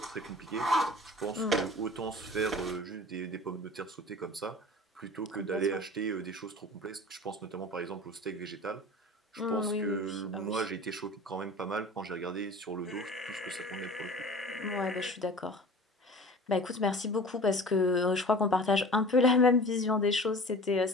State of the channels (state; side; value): normal; both; correlation 0.40